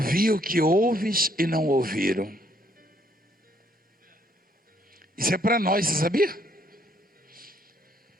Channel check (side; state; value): both; normal; correlation 0.68